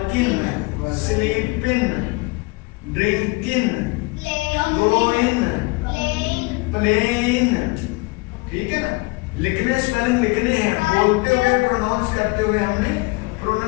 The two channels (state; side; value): quieter; right; 25.7 dB